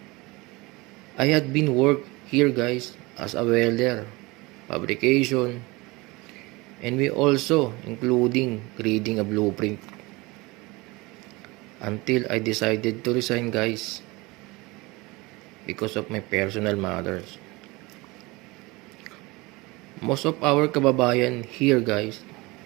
I had been work here guys as a welder, fabrication, and we also including reading a blueprint until I decided to resign guys because of my personal matters. Most of our kababayan here guys,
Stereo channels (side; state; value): left; quieter; 23.4 dB